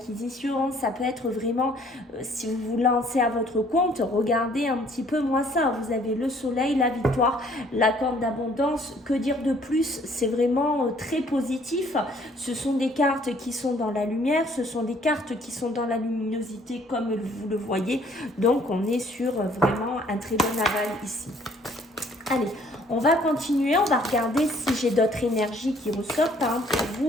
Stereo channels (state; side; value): normal; both; correlation 0.60